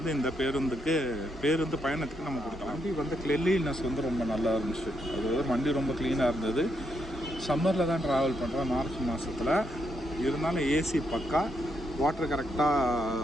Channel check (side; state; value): both; normal; correlation 0.79